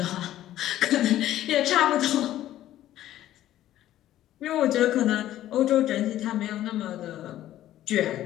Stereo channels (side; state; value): right; quieter; 13.2 dB